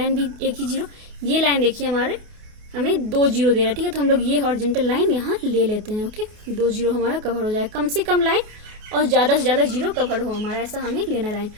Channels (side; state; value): left; late; 28 ms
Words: भी एक ही 0, ये लाइन देखिए हमारे हमें 2 0 दे रहा है। ठीक है, तो हम लोग ये हॉरिजॉन्टल लाइन यहाँ ले लेते हैं। ओके, 2 0 हमारा कवर हो जाए, कम से कम लाइन और ज़्यादा से ज़्यादा 0 कवर हो हमारा, ऐसा हमें लेना लाइन।